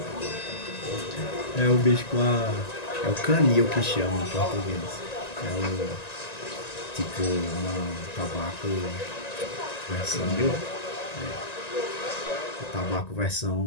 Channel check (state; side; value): late; right; 1.9 ms